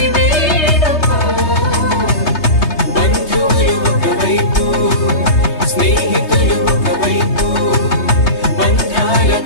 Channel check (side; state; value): right; late; 3.2 ms